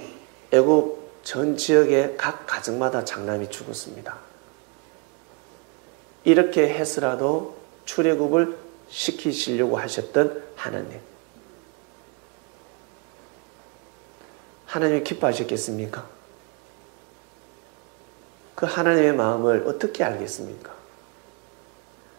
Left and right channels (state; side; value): quieter; left; 33.1 dB